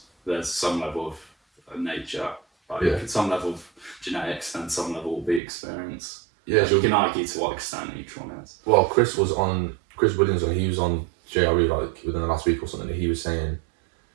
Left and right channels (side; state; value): left; drops out; at 5.4 s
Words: some level of nature, some level of genetics, and some level will be experience. Yeah, you can argue to what extent each one is. Well, Chris Williams, he was on JRE like within the last week or something, and he was saying